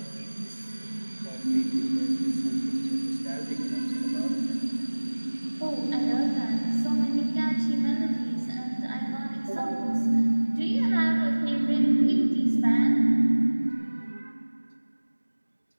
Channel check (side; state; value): both; inverted; correlation -1.00